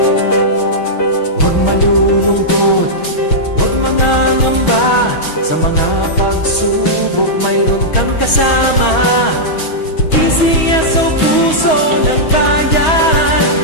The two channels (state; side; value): late; right; 6.3 ms